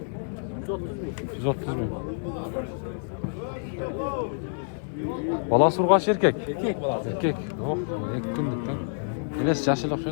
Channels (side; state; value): right; silent; digital silence